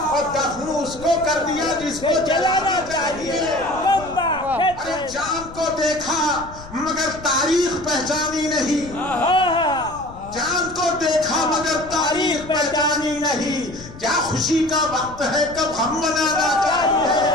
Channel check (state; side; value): noise; left; rumble, 17 dB below the sound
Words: دفن اس کو کر دیا جس کو جلانا چاہیے۔ ارے چاند کو دیکھا مگر تاریخ پہچانی نہیں، چاند کو دیکھا مگر تاریخ پہچانی نہیں، کیا خوشی کا وقت ہے کب ہم منانا چاہیے،